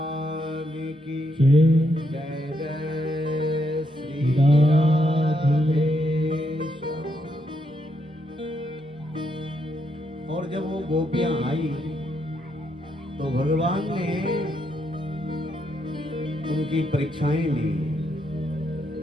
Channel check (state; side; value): normal; both; correlation 0.78